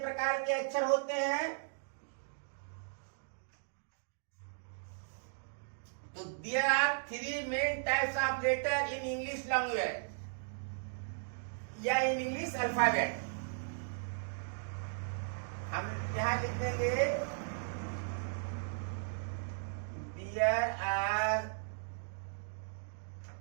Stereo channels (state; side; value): silent; left; digital silence